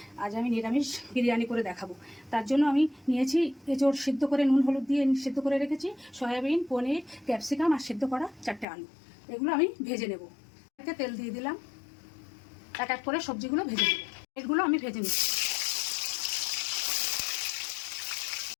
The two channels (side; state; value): right; drops out; at 8.7 s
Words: আজ আমি নিরামিষ বিরিয়ানি করে দেখাবো। তার জন্য আমি নিয়েছি এঁচোড় সিদ্ধ করে নুন হলুদ দিয়ে সিদ্ধ করে রেখেছি, সয়াবিন, পনির, ক্যাপসিকাম আর সিদ্ধ করা 4টে আলু। এগুলো আমি ভেজে নেব। এতে তেল দিয়ে দিলাম, এক এক করে সবজিগুলো ভেজে নেব। এগুলো আমি ভেজে নিচ্ছি।